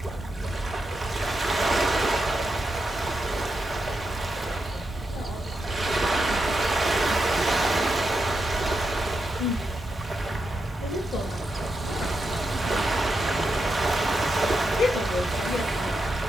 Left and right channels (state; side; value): normal; both; correlation 0.85